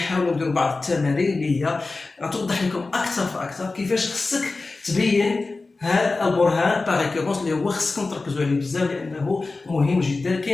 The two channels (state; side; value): quieter; right; 3.6 dB